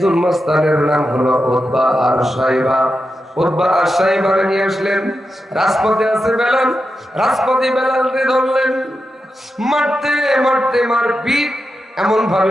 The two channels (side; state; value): both; normal; correlation 0.88